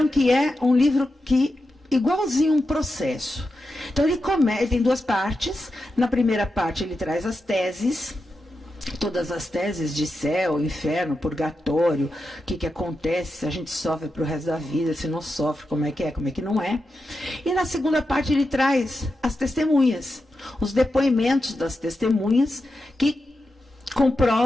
que é um livro que, igualzinho um processo. Então, ele tem 2 partes. Na primeira parte, ele traz as teses, todas as teses de céu, inferno, purgatório, o que acontece, se a gente sofre para o resto da vida, se não sofre, como é que não é. E na segunda parte ele traz as testemunhas, os depoimentos das testemunhas que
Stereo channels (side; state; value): both; normal; correlation 0.89